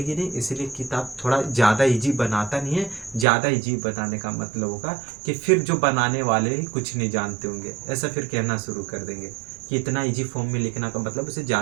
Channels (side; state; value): left; drops out; at 3.2 s